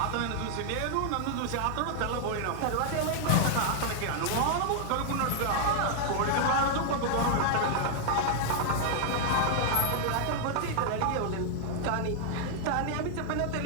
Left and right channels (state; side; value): different; both; correlation 0.00